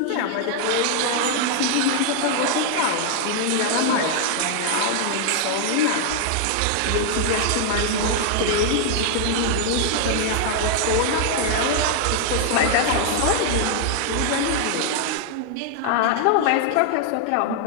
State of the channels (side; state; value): both; different; correlation 0.00